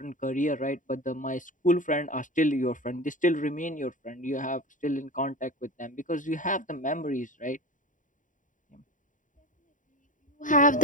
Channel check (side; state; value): right; late; 0.38 ms